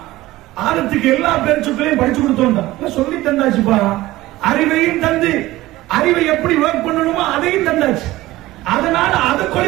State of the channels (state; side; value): quieter; left; 17.4 dB